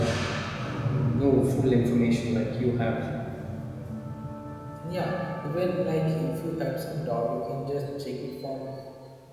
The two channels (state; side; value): identical; both; correlation 1.00